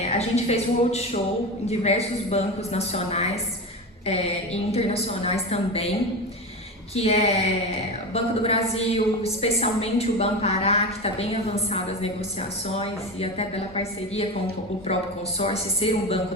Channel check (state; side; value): normal; both; correlation 0.23